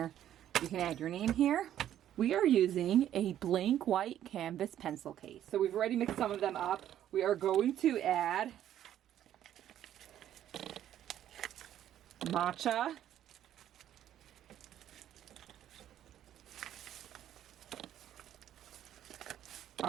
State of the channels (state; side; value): quieter; left; 11.3 dB